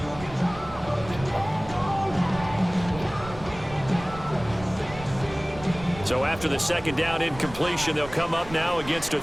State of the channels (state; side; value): noise; right; rumble, 14 dB below the sound